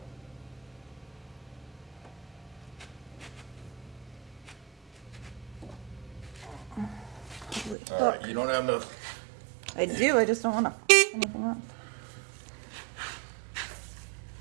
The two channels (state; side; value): drops out; left; at 7.8 s